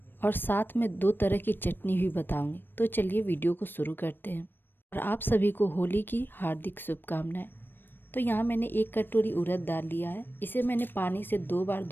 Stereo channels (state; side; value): late; right; 0.095 ms